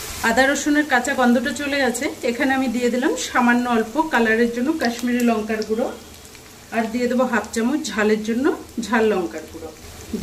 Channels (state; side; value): identical; both; correlation 1.00